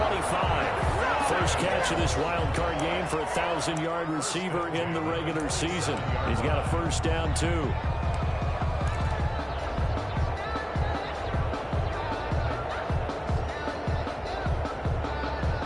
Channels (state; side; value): identical; both; correlation 1.00